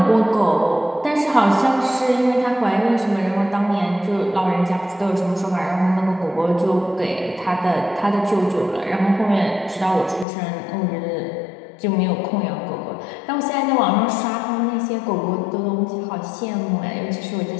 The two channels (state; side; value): drops out; right; at 10.2 s